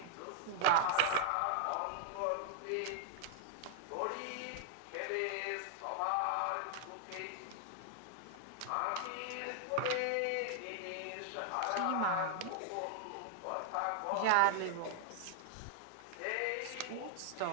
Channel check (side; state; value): both; different; correlation -0.01